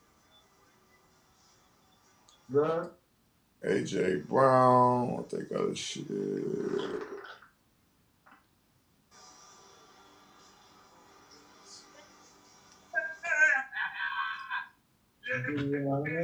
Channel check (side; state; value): both; identical; correlation 1.00